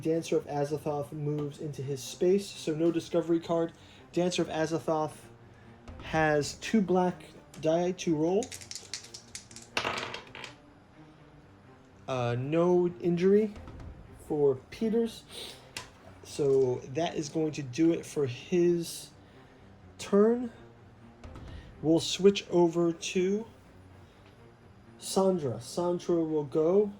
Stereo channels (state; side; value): identical; both; correlation 1.00